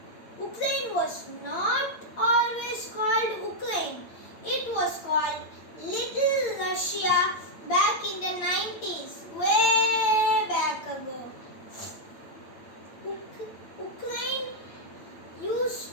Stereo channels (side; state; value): right; late; 8.8 ms